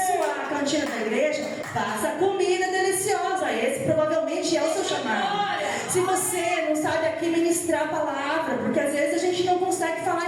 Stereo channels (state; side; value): identical; both; correlation 1.00